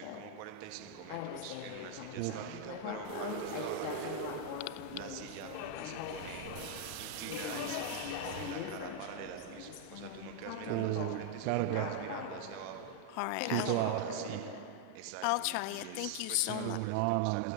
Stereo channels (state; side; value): different; both; correlation 0.00